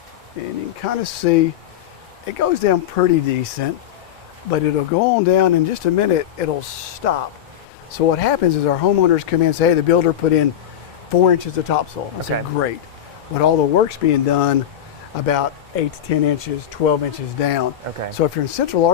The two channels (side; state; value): right; quieter; 10.5 dB